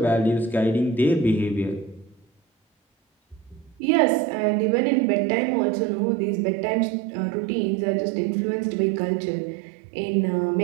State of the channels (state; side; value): drops out; left; at 3.8 s